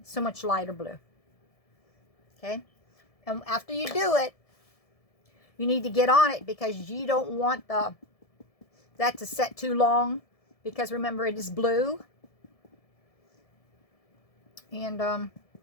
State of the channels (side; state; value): right; late; 1.7 ms